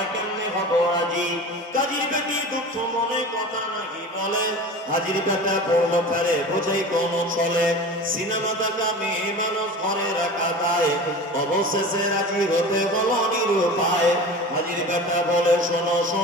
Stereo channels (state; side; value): normal; both; correlation 0.35